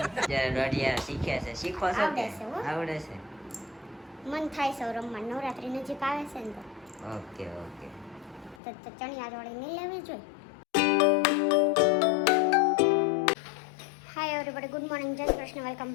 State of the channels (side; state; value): right; drops out; at 8.6 s